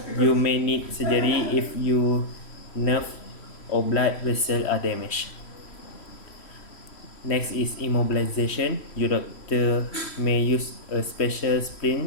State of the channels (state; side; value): late; right; 3.1 ms